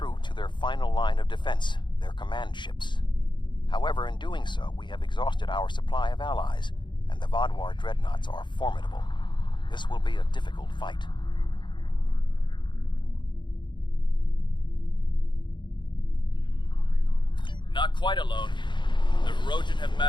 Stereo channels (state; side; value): late; right; 0.23 ms